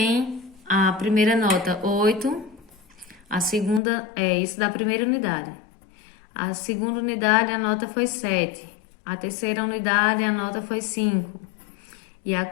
a primeira nota 8, a segunda é isso da primeira unidade. A segunda unidade a nota foi 7. A terceira unidade a nota foi 5. E a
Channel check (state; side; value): drops out; right; at 3.8 s